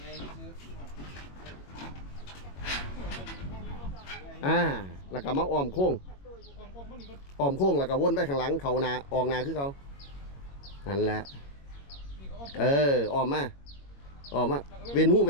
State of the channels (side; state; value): right; late; 21 ms